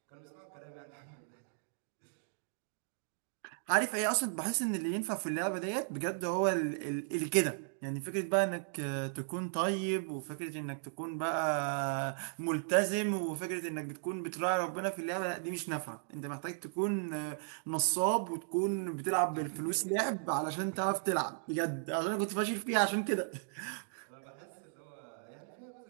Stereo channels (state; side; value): silent; left; digital silence